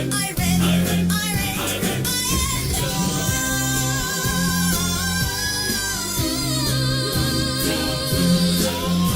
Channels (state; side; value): identical; both; correlation 1.00